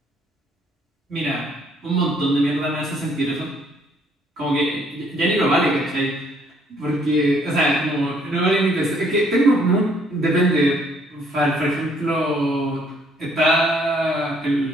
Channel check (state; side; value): normal; both; correlation 0.65